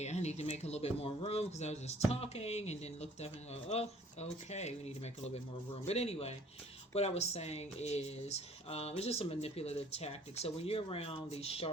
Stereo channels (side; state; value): both; normal; correlation 0.55